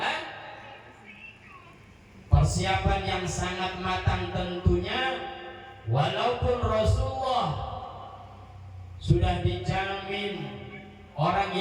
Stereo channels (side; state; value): both; identical; correlation 1.00